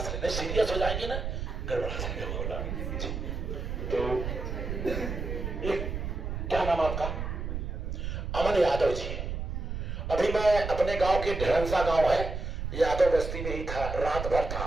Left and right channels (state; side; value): noise; right; rumble, 4 dB below the sound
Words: लेना, सीरियस हो जाएंगे ना, गड़बड़ा जाएंगे। तो क्या नाम आपका? अमन यादव जी। अभी मैं अपने गांव के ढेरंसा गांव है, यादव बस्ती में ही था, रात भर था।